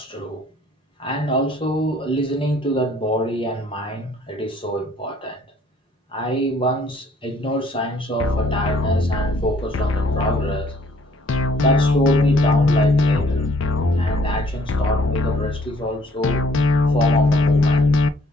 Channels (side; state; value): both; normal; correlation 0.61